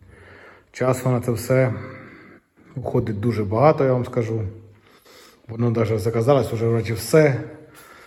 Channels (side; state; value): both; identical; correlation 1.00